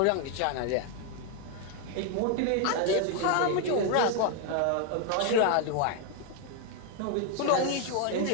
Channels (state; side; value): different; both; correlation 0.01